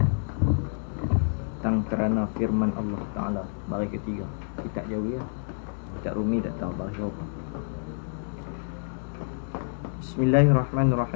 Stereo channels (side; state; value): right; silent; digital silence